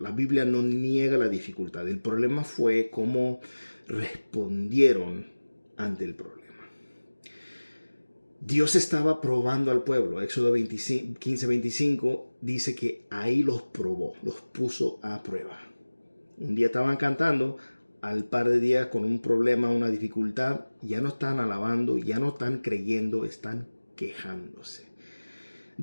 Biblia no niega la dificultad, el problema fue cómo respondieron ante el problema. Dios estaba probando al pueblo. Éxodo 15, 25 dice que ahí los probó, los puso a prueba. Un día estaban cantando, al par de días con un problema, una dificultad, ya no están alabando, ya no están creyendo, están quejándose.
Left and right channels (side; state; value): both; inverted; correlation -1.00